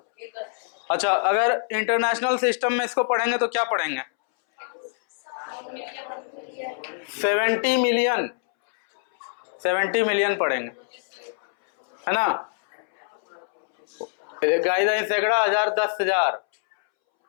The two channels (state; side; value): silent; right; 62 dB below the other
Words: अच्छा, अगर इंटरनेशनल सिस्टम में इसको पढ़ेंगे तो क्या पढ़ेंगे? 70 मिलियन, 70 मिलियन पढ़ेंगे, है ना। इकाई दही सैकड़ा, हजार, 10,000,